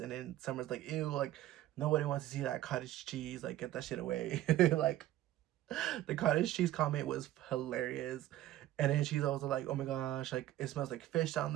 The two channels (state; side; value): quieter; left; 14.0 dB